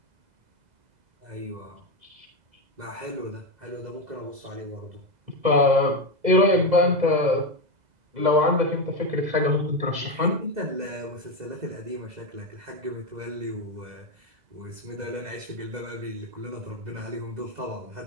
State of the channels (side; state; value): left; late; 2.0 ms